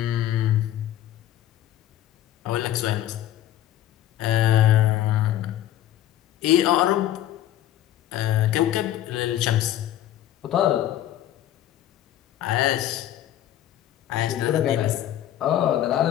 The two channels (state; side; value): quieter; right; 12.6 dB